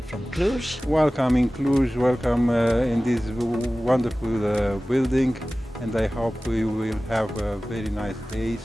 from Cluj. Welcome in Cluj, welcome in this wonderful building, and I hope we will have very nice days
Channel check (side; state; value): both; normal; correlation 0.97